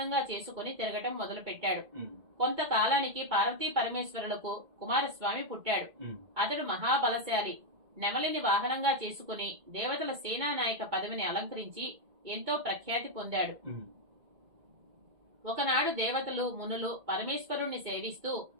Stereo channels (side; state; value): left; late; 2.2 ms